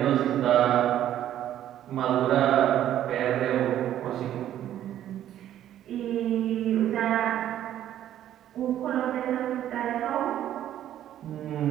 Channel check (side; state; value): left; quieter; 11.6 dB